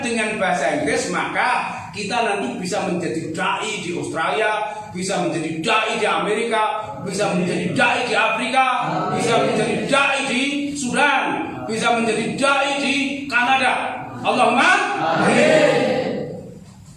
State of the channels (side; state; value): both; identical; correlation 1.00